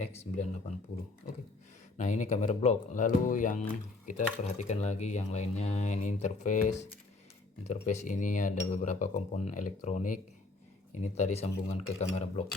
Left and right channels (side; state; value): right; quieter; 3.3 dB